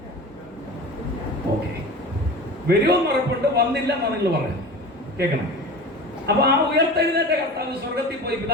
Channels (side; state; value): both; normal; correlation 0.34